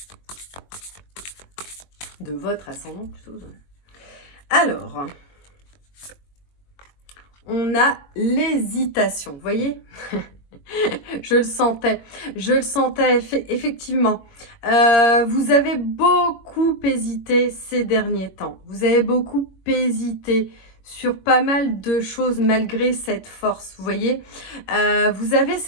de votre ascendant plutôt. Alors, on a l'hésitation, vous voyez. Je le sentais effectivement. Vous avez beaucoup hésité ces derniers temps. Vous avez beaucoup hésité sur pas mal de choses malgré cette force, vous voyez. Vous avez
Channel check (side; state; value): right; late; 22 ms